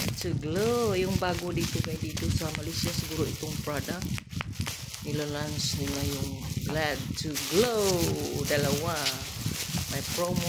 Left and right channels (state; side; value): identical; both; correlation 1.00